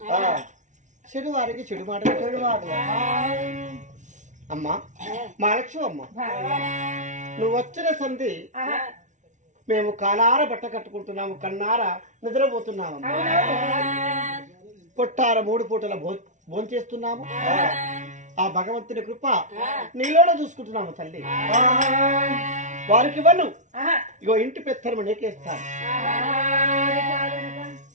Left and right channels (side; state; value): left; late; 0.36 ms